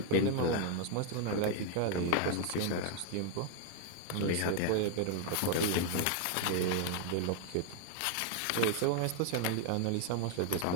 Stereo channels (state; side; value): different; both; correlation 0.00